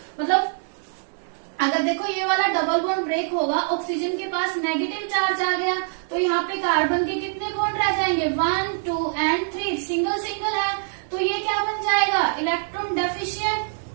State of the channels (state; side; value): silent; left; digital silence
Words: मतलब अगर देखो ये वाला डबल बॉन्ड ब्रेक होगा, ऑक्सीजन के पास नेगेटिव चार्ज आ गया तो यहाँ पे कार्बन के कितने बॉन्ड रह जाएंगे, 1 2 एंड 3, सिंगल सिंगल है। तो ये क्या बन जाएगा, इलेक्ट्रॉन डेफिशिएंट